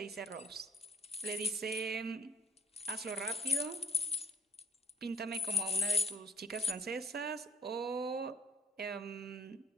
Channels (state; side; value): normal; both; correlation 0.59